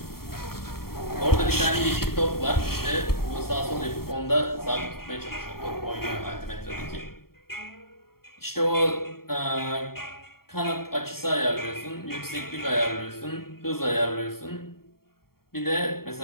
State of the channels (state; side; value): late; right; 0.93 ms